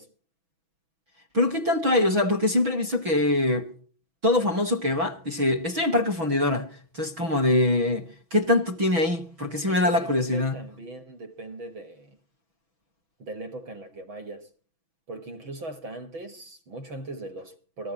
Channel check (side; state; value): left; late; 6.1 ms